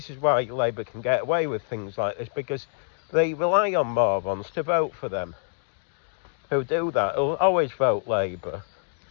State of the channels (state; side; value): silent; right; digital silence